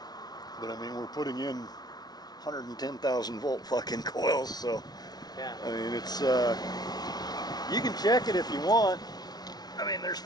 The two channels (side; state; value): right; late; 0.19 ms